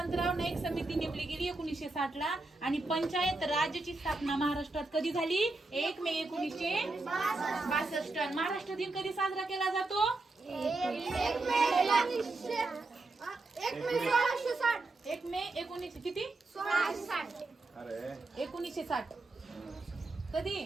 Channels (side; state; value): left; quieter; 3.2 dB